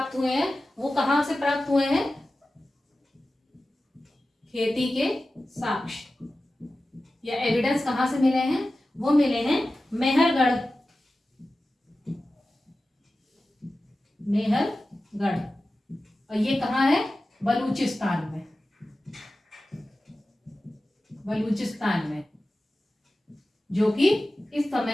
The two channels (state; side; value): normal; both; correlation 0.95